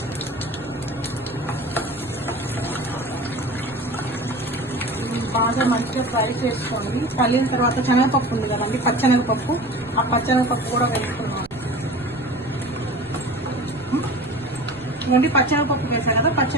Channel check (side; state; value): right; noise; rumble, 22 dB below the sound